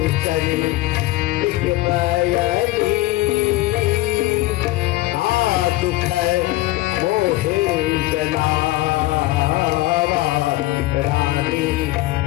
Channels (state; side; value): quieter; right; 18.3 dB